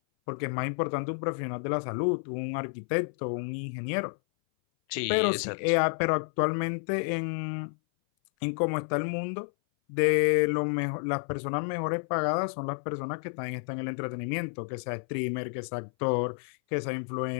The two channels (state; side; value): silent; right; 57 dB below the other